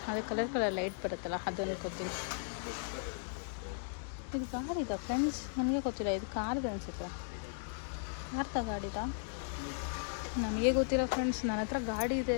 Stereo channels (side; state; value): right; silent; digital silence